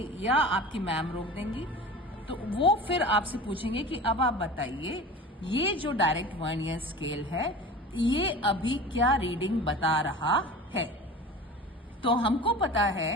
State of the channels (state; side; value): normal; both; correlation 0.36